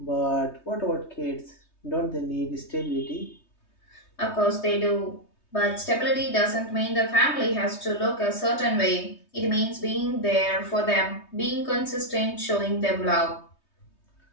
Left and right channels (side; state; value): right; late; 3.2 ms